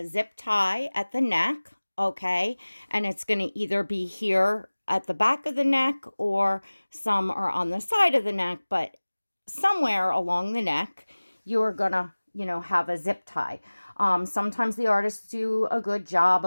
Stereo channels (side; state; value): both; inverted; correlation -1.00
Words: zip tie at the neck, okay? And it's going to either be here at the back of the neck or some are on the side of the neck, but somewhere along the neck, you're going to, have a zip tie. Sometimes the artists do a good job